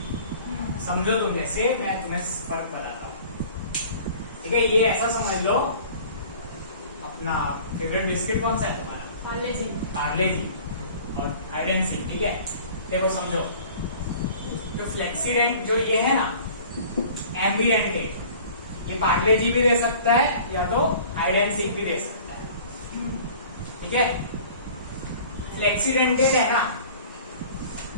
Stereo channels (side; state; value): both; inverted; correlation -0.46